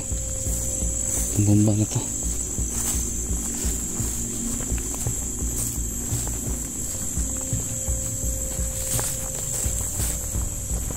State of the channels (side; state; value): both; identical; correlation 1.00